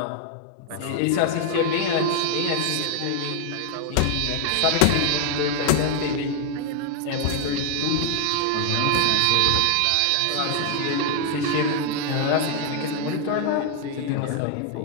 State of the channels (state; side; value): different; both; correlation 0.00